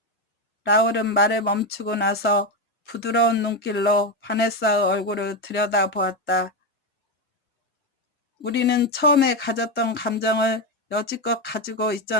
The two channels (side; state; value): both; normal; correlation 0.10